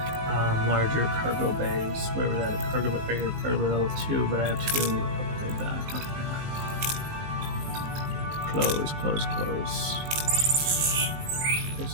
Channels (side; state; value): left; late; 19 ms